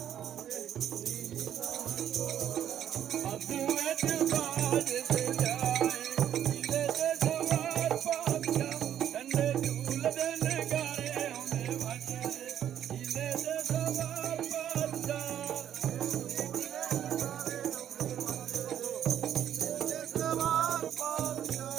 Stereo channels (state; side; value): quieter; left; 10.2 dB